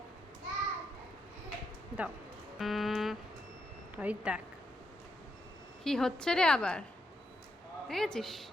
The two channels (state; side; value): normal; both; correlation 0.81